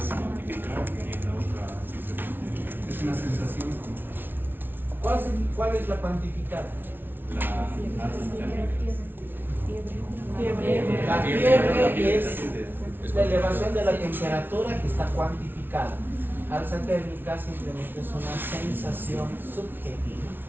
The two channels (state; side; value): late; left; 0.10 ms